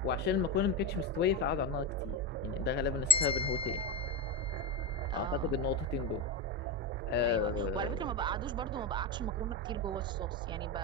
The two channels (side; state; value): both; normal; correlation 0.17